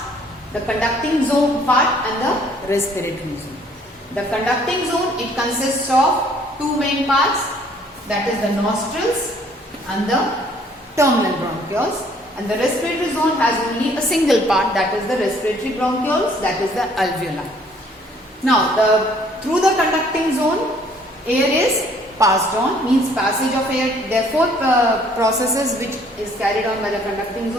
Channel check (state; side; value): normal; both; correlation 0.60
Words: the conducting zone part and the respiratory zone. The conducting zone, it consists of two main parts, that is the nostrils and the terminal bronchioles, and the respiratory zone has only a single part, that is the respiratory bronchioles, that is the alveoli. Now, through the conducting zone, air is passed on, means passage of air. There are four processes which is carried on by the conducting